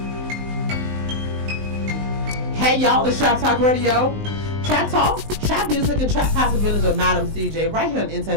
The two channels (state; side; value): late; left; 19 ms